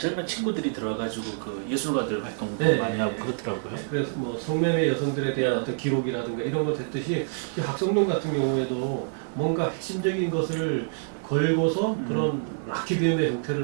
친구들이 들어가지고 그 예술가들 활동도 많이 하고 그렇더라고요. 그래서 뭐 성매매 여성들에 대한 어떤 기록이라든가 이런 거 됐듯이 학성동 같은 경우에도 뭔가 핵심적인 것을 걸고서 그런 라키비움의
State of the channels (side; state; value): left; silent; digital silence